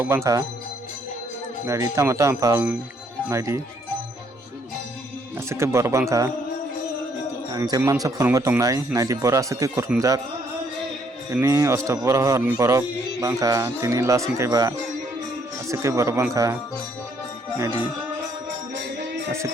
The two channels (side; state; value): both; normal; correlation 0.68